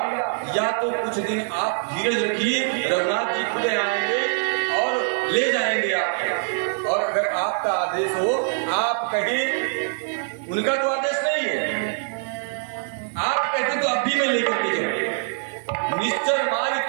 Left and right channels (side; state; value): left; silent; digital silence